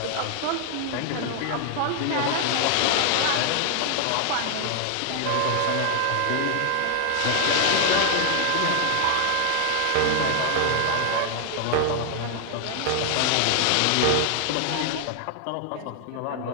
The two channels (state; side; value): different; both; correlation 0.00